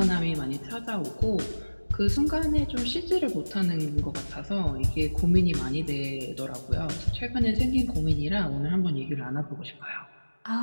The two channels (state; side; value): inverted; both; correlation -1.00